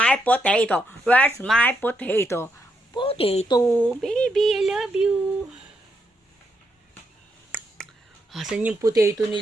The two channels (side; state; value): both; normal; correlation 0.80